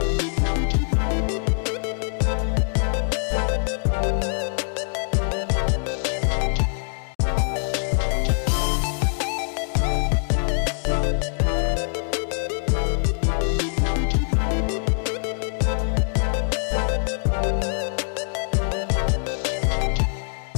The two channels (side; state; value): right; silent; digital silence